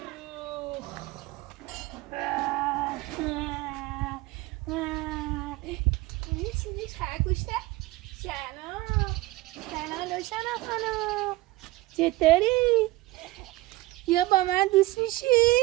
این چیزی خرگوشته سلام روشنا خانم چطوری؟ یا با من دوست میشی؟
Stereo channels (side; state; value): left; quieter; 19.2 dB